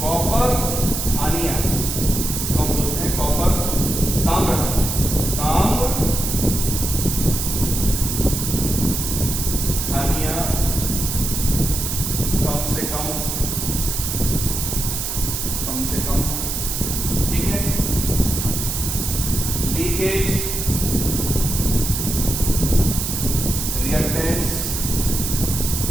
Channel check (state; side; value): noise; right; hiss, 3 dB below the sound